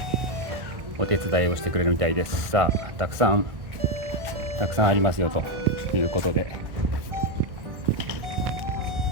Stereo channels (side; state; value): left; late; 1.6 ms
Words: お手伝いをしてくれるみたいです。さあ、たくさんありますよということで、